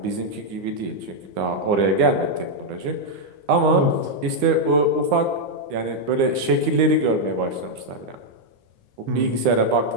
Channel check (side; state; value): left; late; 9.9 ms